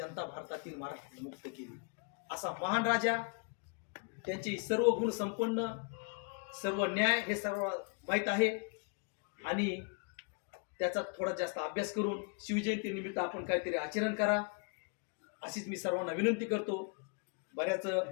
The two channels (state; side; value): quieter; right; 37.1 dB